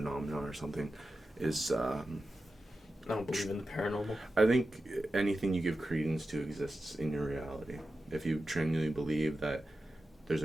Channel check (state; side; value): normal; both; correlation 0.92